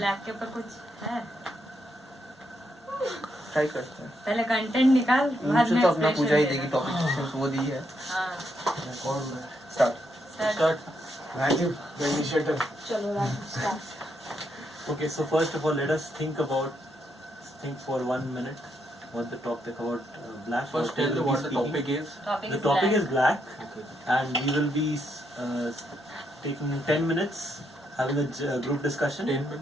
के ऊपर कुछ है ट्राई करते हैं पहले कंटेंट निकाल बाद मुझे में तो अपना expression पूजा ही देना। देगी टॉपिक वो दी है हाँ कौन start start। Rajiv the initiator चलो Raju start Okay, so first of all, let us think for 1 minute what the topic about black. First, tell me what the topic is. Topic The is topic black. is black, Okay. and we will be taking 10 minutes having a group discussion. 10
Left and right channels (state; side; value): normal; both; correlation 0.78